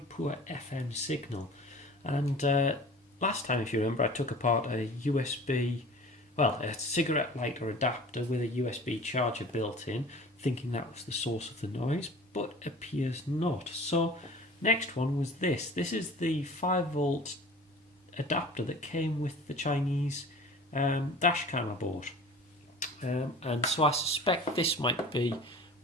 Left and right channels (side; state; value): both; normal; correlation 0.42